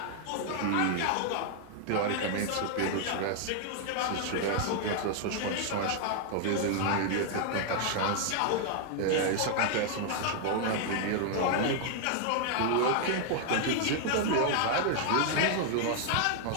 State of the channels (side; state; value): both; different; correlation 0.00